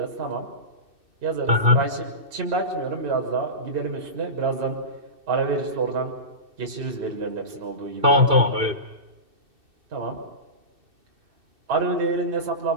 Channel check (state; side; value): late; left; 2.6 ms